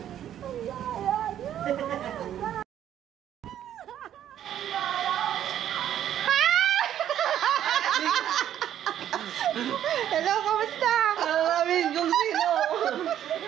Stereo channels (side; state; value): left; quieter; 10.8 dB